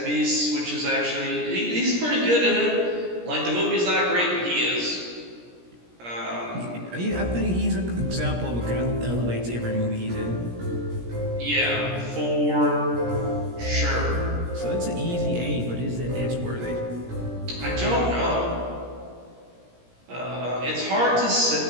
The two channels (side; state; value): left; late; 17 ms